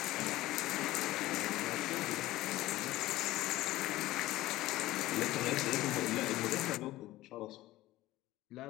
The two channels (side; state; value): right; quieter; 16.7 dB